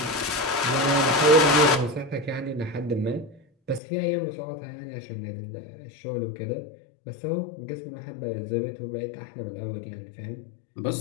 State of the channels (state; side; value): drops out; right; at 3.8 s